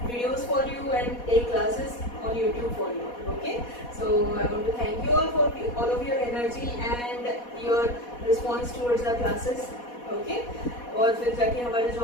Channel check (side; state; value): right; late; 4.1 ms